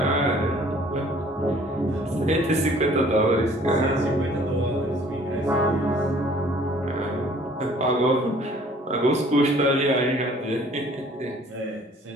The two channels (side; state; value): both; normal; correlation 0.55